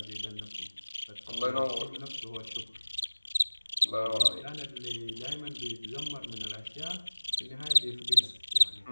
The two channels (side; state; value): both; inverted; correlation -1.00